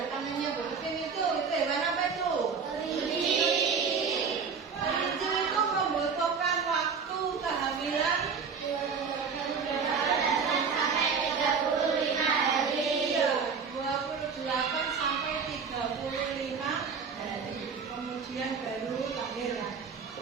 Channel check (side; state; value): left; quieter; 5.8 dB